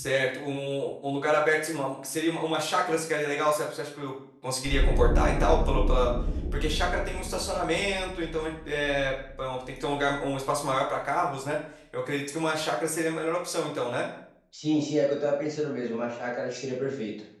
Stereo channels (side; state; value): both; identical; correlation 1.00